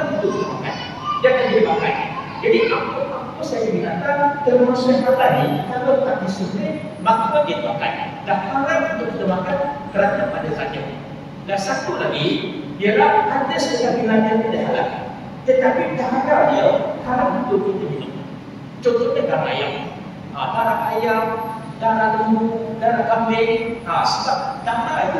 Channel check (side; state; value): both; identical; correlation 1.00